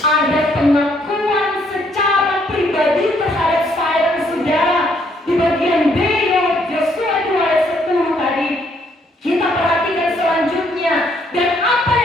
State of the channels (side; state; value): both; normal; correlation 0.69